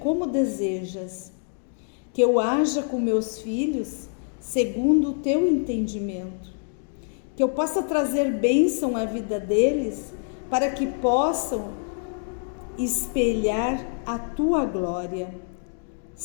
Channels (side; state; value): right; silent; 60 dB below the other